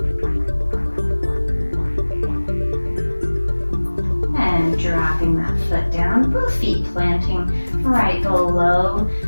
And dropping that foot down, both feet planting right below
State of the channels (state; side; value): inverted; both; correlation -1.00